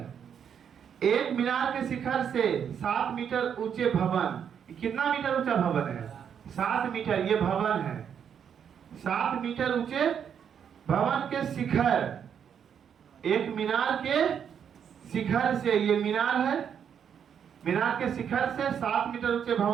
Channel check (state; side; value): quieter; left; 8.0 dB